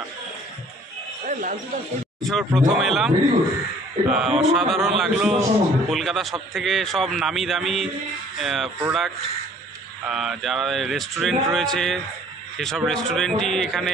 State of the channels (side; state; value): both; normal; correlation 0.55